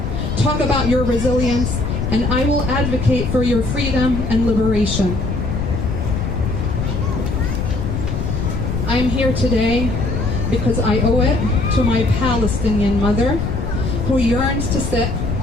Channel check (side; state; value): left; noise; rumble, 3 dB below the sound